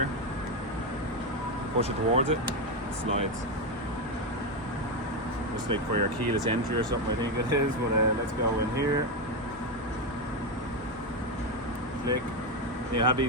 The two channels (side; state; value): both; normal; correlation 0.09